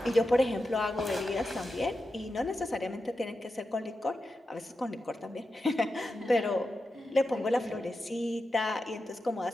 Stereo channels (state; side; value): normal; both; correlation 0.90